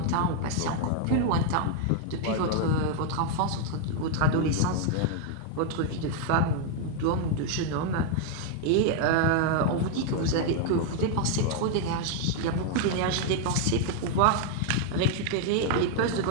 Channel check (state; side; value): different; both; correlation 0.00